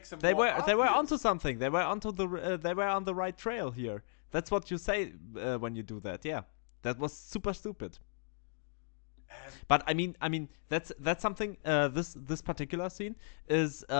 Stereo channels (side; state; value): right; silent; digital silence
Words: him. They were onto something. They were they were on the right trail here. That's what you say when you do that. Yeah, that was super stupid. But I mean that's something. This particular scene is